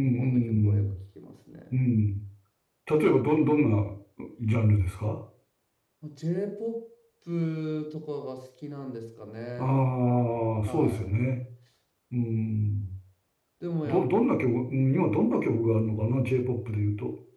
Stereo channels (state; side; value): identical; both; correlation 1.00